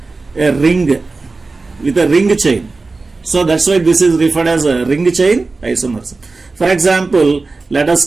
ring chain. So that's why this is referred as a ring chain isomerism. For example, let us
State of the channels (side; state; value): left; quieter; 3.7 dB